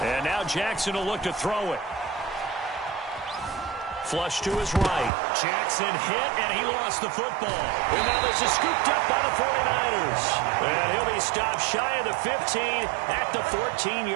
And now Jackson will look to throw it. Flush to his right. Jackson hit, and he lost the football. And now this is scooped up by the 49ers. And he'll be stopped shy of the 15 at the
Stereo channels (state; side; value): drops out; left; at 5.1 s